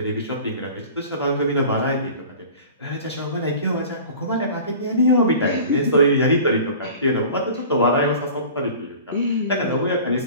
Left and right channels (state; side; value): inverted; both; correlation -0.41